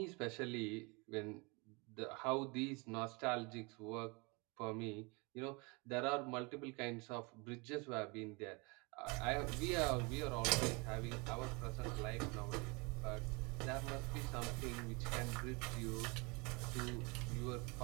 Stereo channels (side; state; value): left; quieter; 29.0 dB